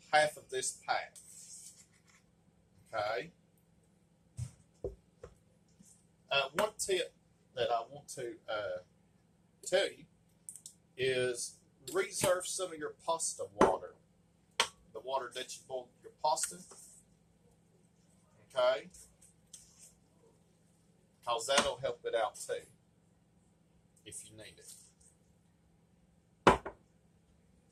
half of this pack. Okay? One tip that I want to tell you is reserve some of your pasta water. The water that you boil your pasta. Okay? Because that'll help it out too. If you need it.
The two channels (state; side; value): identical; both; correlation 1.00